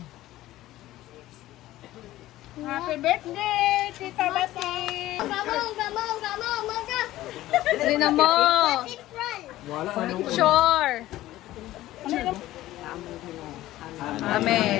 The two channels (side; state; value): right; quieter; 15.5 dB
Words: Happy birthday, Tita Bati! Dali na mo!